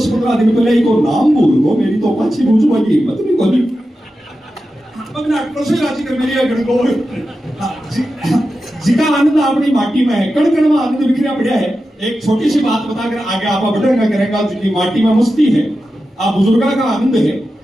दिन पहले को नाम भूल गो, मेरी तो पक्षी बूझवा की हिम्मत नहीं बोली। अपने अटकल से राजी कर मेरी गणगौर जिका आनंद अपनी माटी में है, कण कण में आनंद बिखरा पड़ा है। एक छोटी सी बात बताकर आगे आप बढ़ेगा करेगा जिनकी माटी में मस्ती है, आप बुजुर्गा का आनंद है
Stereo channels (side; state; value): both; normal; correlation 0.91